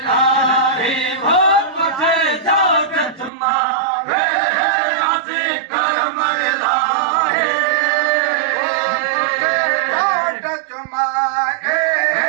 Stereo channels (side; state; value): left; drops out; at 3.3 s